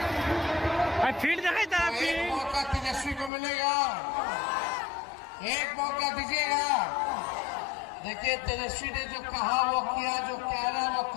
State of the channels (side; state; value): right; drops out; at 3.3 s